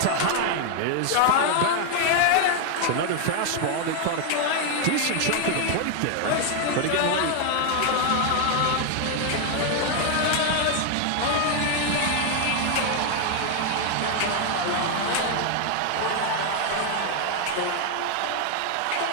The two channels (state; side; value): different; both; correlation 0.00